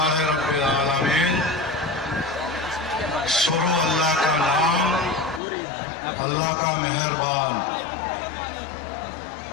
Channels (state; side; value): drops out; right; at 5.4 s